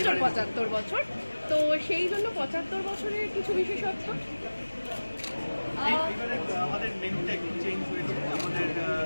৭৫ বছর, তো সেই জন্য ৭৫ বছরের কিছু বিশেষত্ব। আমাদের মেনুটা একটু চেঞ্জ হয়েছে, আমাদের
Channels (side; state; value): both; inverted; correlation -1.00